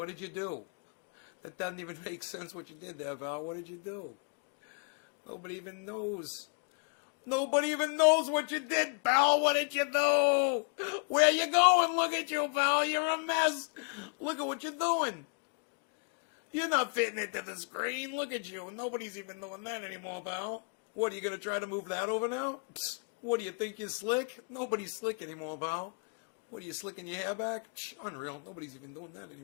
did you do? That doesn't even make sense what you did there, Val. What did you do? Nobody even knows. Nobody even knows what you did, pal. What did you do? Where you going? Look at you, pal. You're a mess. Look at what you're doing. You're not fitting into the screen. Look at you. Nobody's even doing that anymore, pal. What, are you going to try to move that over now? Psst. What, do you think you're slick? Nobody's slick anymore, pal. What, are you slicking your hair back? Psh, unreal. Nobody's even doing that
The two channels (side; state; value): right; quieter; 39.7 dB